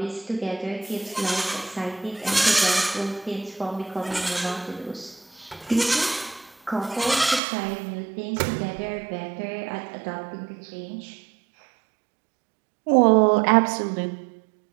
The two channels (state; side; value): drops out; left; at 7.4 s